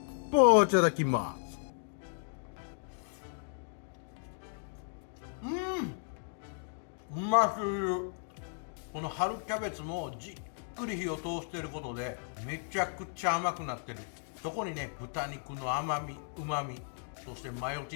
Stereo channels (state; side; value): silent; right; digital silence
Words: ポーいただきます。うますぎる。この春キャベツもじっくり火を通していることでめちゃくちゃ甘くなってる。そこにね、豚肉の甘み、旨み、そしてマヨチ